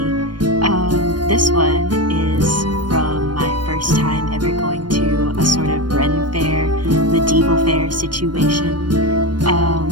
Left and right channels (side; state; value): left; late; 0.71 ms